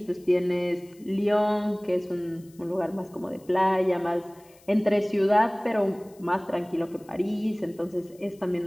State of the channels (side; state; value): left; noise; hiss, 28 dB below the sound